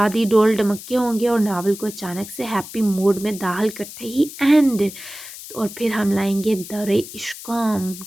ڈول ڈمکے ہوں گے اور ناول کو اچانک سے ہیپی موڈ میں داخل کرتے ہی اینڈ، اور پھر ہم لائیں گے در عشقام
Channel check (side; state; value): left; noise; hiss, 13 dB below the sound